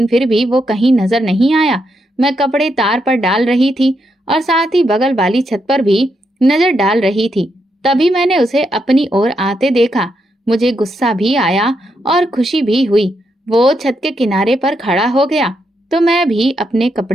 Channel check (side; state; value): both; normal; correlation 0.81